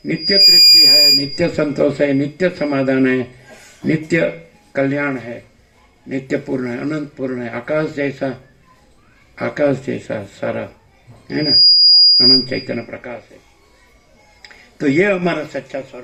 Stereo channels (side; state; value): both; identical; correlation 1.00